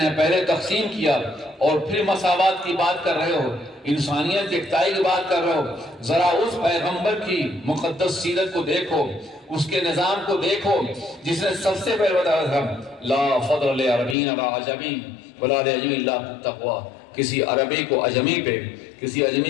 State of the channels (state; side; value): drops out; right; at 14.2 s